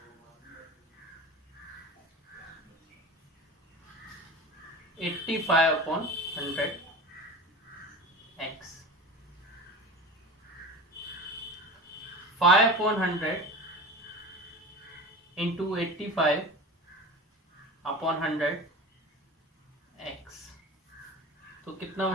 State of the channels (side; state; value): both; normal; correlation 0.32